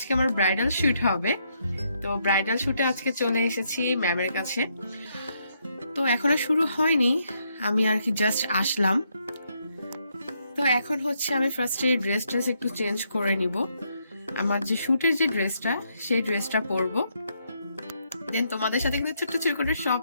আমার ব্রাইডাল শুট হবে। তো ব্রাইডাল শুটে আজকে চলে এসেছি ম্যামের কাছে। তো এখনো শুরু হয়নি, আমি আর কি জাস্ট আসলাম। তো এখন হচ্ছে আমি ফার্স্টে ড্রেসটা একটু চেঞ্জ করে নিব, আমার যে শুটের যে ড্রেসটা সেই ড্রেসটা পরবো। দেন তোমাদের সাথে কিন্তু ছোট্ট ছোট করে সব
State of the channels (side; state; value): both; inverted; correlation -0.76